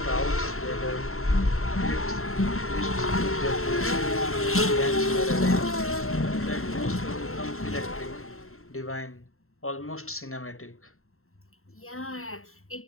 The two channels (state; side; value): late; right; 0.62 ms